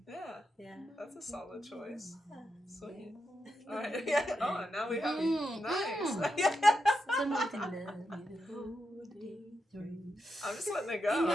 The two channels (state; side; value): normal; both; correlation 0.86